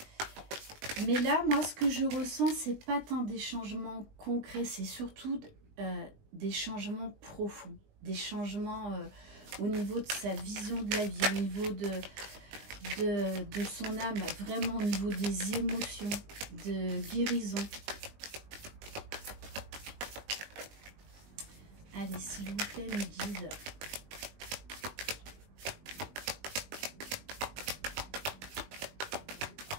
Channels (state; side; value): late; left; 20 ms